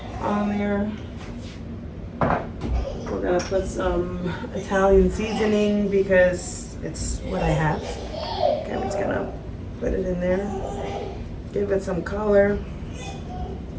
on there. We're gonna put some Italian seasoning because it's what I have. Okay, I'm just gonna put it in there. Give it some color.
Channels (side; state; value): both; identical; correlation 1.00